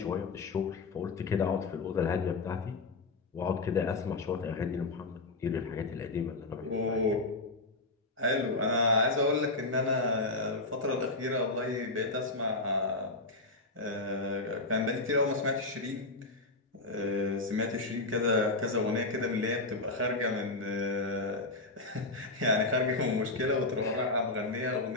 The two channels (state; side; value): quieter; right; 3.2 dB